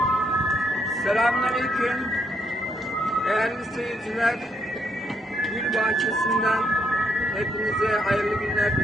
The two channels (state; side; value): normal; both; correlation 0.76